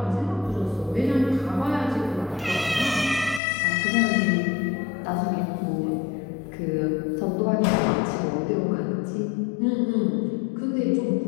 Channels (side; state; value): right; drops out; at 3.4 s